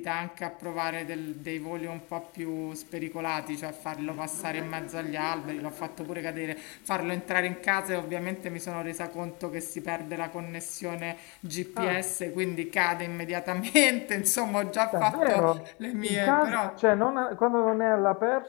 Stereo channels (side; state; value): right; quieter; 29.8 dB